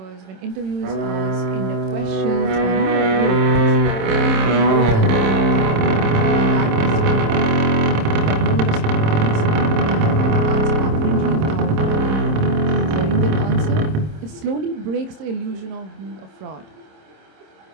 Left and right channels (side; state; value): left; late; 26 ms